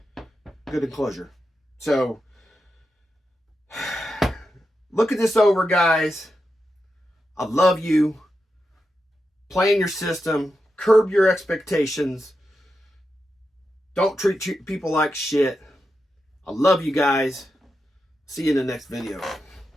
good enclosure. So look at this over, guys. I love you. Plan your system. Curb your expectations. Don't treat people like shit. I love you guys. See you in the next video.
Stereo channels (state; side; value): normal; both; correlation 0.88